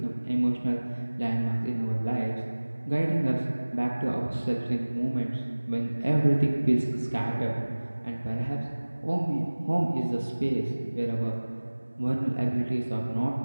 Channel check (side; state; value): both; inverted; correlation -1.00